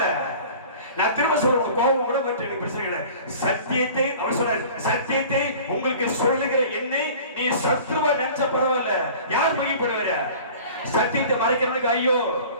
நான் திரும்ப சொல்றேன், கோபம் கூட பற்றி எனக்கு பிரச்சனை. சத்தியத்தை அவர் சொல்ற, சத்தியத்தை உங்களுக்கு சொல்லுகிற என்னை நீ சத்துருவா நினைச்ச பரவாயில்ல. யார் மகிழ்ப்படுவார? சத்தியத்தை மறைக்கிறவனுக்கு ஐயோ,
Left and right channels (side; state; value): both; inverted; correlation -0.43